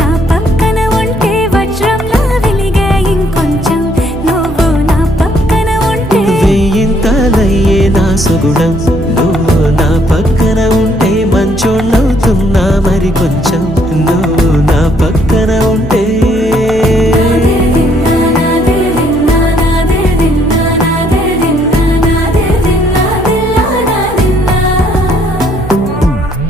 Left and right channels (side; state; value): both; normal; correlation 0.67